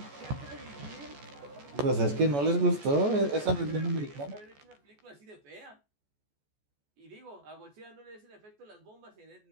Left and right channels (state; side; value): late; left; 14 ms